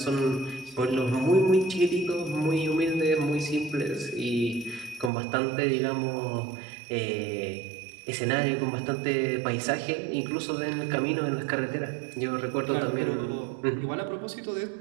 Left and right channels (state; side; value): drops out; left; at 5.1 s